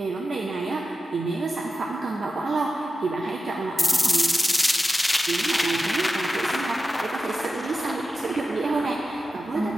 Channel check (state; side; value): normal; both; correlation 0.92